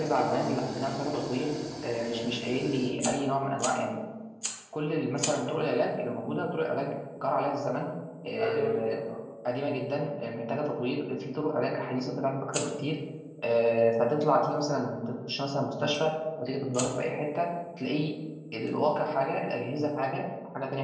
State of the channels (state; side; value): identical; both; correlation 1.00